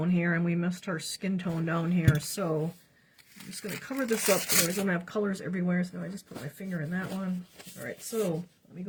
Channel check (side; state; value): both; identical; correlation 1.00